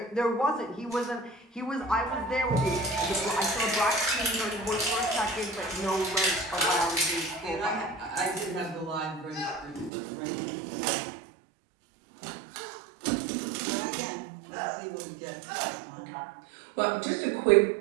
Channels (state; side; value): drops out; left; at 9.9 s